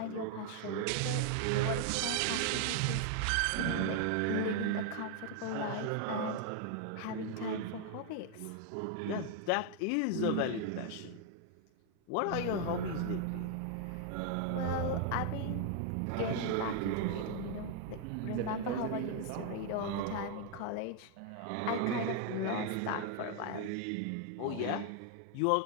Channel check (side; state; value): both; different; correlation 0.00